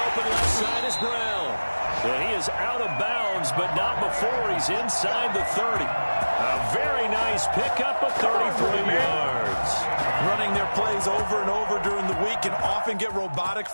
open left side is Brown. Well, he is out of bounds, but not before he's inside the 30. A very nice pickup of 34 yards. Running their plays over and over during the week can often get robotic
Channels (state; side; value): inverted; both; correlation -1.00